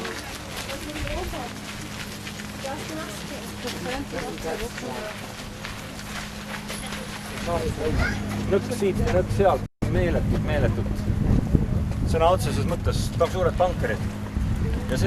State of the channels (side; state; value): both; identical; correlation 1.00